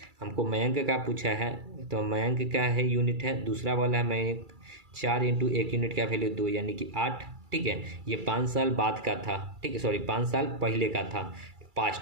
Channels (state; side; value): late; left; 2.3 ms